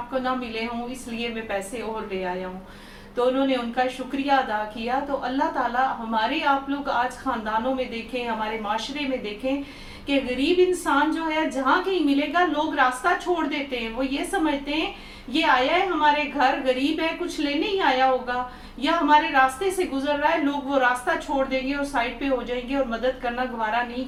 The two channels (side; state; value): both; identical; correlation 1.00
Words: ना मिले हों, इसलिए मैं पैसे और ले आया हूँ। तो उन्होंने उनका शुक्रिया अदा किया। तो अल्लाह ताला हमारे, आप लोग आज ख़ानदानों में देखें, हमारे माशरे में देखें कि गरीब इंसान जो है जहाँ कहीं मिलेगा लोग रास्ता छोड़ देते हैं। वो ये समझते हैं ये आया है हमारे घर, गरीब है, कुछ लेने ही आया होगा, या हमारे रास्ते से गुजर रहा है, लोग वो रास्ता छोड़ देंगे और साइड पे हो जाएंगे और मदद करना गवारा नहीं